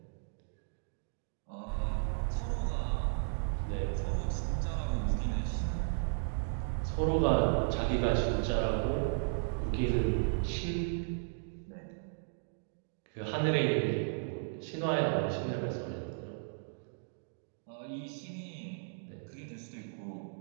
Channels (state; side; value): silent; left; digital silence